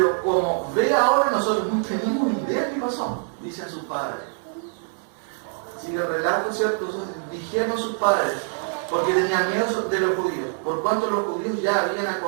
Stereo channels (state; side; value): silent; left; 57 dB below the other